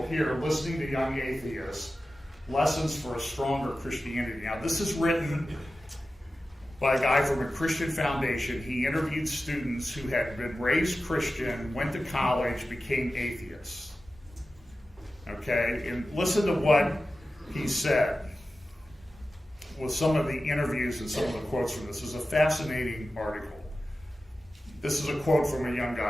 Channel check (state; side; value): normal; both; correlation 0.94